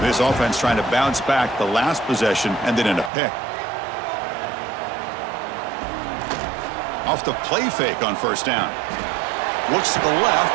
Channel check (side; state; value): left; drops out; at 3.1 s